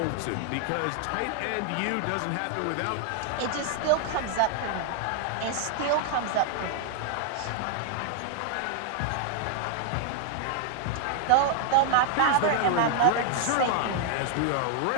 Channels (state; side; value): different; both; correlation 0.00